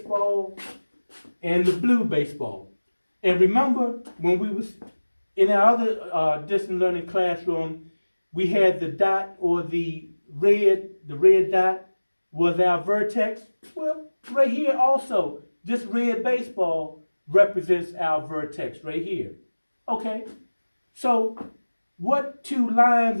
and the blue baseball. And remember, when we was in our other distance learning classroom, we had the dot, or the red dot was our vertex. Well, right here also, this red baseball represents our vertex right here. Okay, so what two lines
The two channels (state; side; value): inverted; both; correlation -1.00